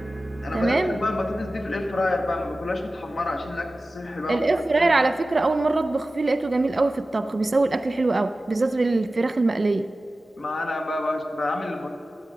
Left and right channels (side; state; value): both; normal; correlation 0.96